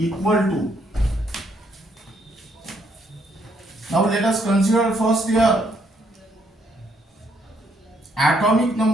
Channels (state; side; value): normal; both; correlation 0.71